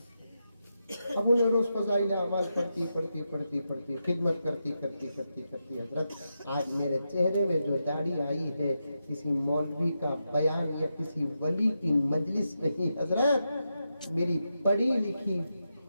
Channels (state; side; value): inverted; both; correlation -0.87